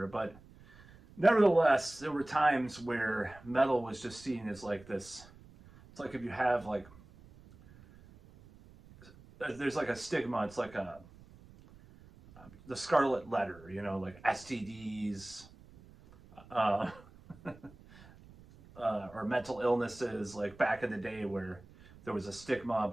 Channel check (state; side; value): noise; right; rumble, 22 dB below the sound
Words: but nevertheless, there were times where metal was just seen as like this. It's like if you have like, there's like a stigma. It's like the scarlet letter, like STDs, uh, or mental illnesses, like back in the day where there was a stigma